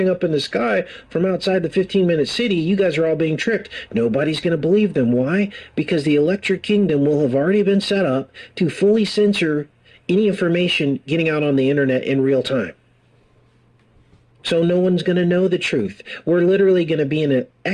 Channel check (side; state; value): both; identical; correlation 1.00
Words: up in the sky from outside the 15-minute city. You guys are all being tricked. Nobody's going to believe them. Why? Because the electric kingdom will have already been set up to fully censor any information getting out on the internet in real time. So no one's going to know the truth. We're literally going to be in a